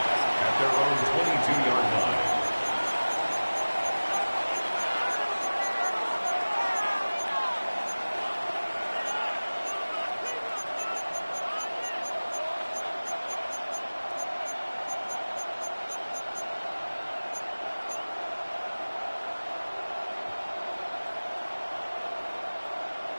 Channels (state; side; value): inverted; both; correlation -1.00